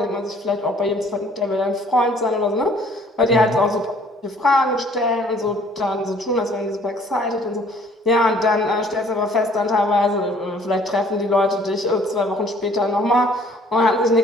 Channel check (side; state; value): both; normal; correlation 0.57